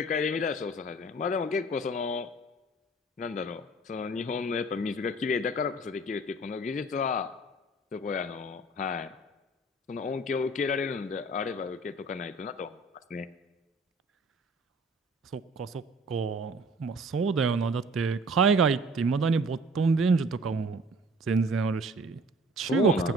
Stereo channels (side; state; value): both; normal; correlation 0.50